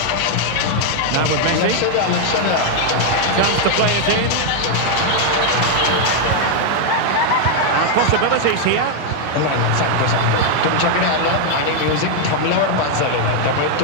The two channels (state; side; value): different; both; correlation 0.00